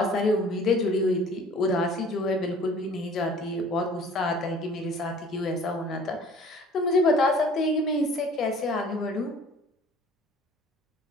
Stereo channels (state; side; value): normal; both; correlation 0.50